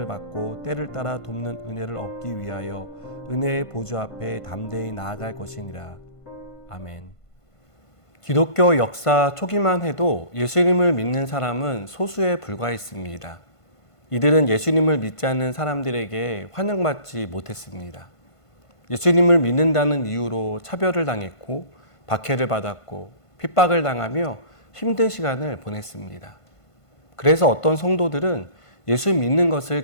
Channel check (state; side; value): late; right; 1.5 ms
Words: 받고 때를 따라 돕는 은혜를 얻기 위하여 은혜의 보좌 앞에 담대히 나아갈 것이니라. 아멘. 기독교 역사 초기만 해도 예수님을 믿는 사람은 소수에 불과했습니다. 이들은 예수님을 믿지 않는 사람들에게 환영받지 못했습니다. 예수님을 믿는다는 이유로 차별을 당했고 박해를 받았고 핍박을 당하며 힘든 시간을 보냈습니다. 그래서 어떤 성도들은 예수 믿는 것을